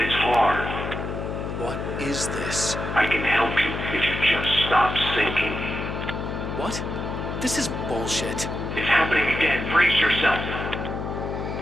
it's hard. What is this? I can help you if you just stop sinking. What? This is bullshit. It's happening again. Brace yourself.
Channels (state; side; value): noise; left; hum, 5 dB below the sound